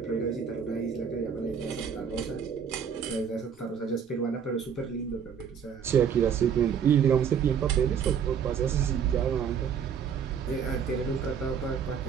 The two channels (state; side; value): quieter; left; 7.4 dB